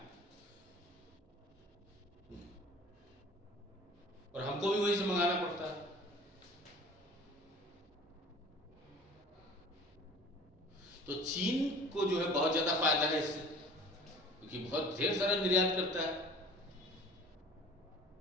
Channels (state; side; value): normal; both; correlation 0.45